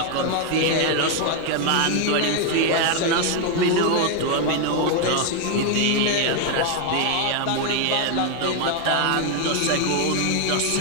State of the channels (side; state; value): both; different; correlation 0.01